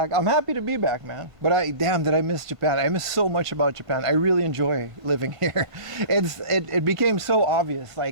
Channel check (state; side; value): late; left; 1.5 ms